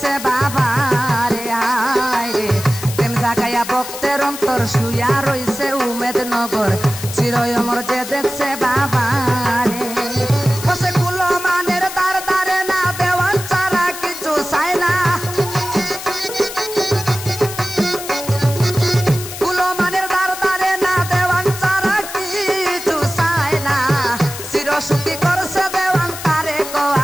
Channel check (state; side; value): noise; left; hiss, 10 dB below the sound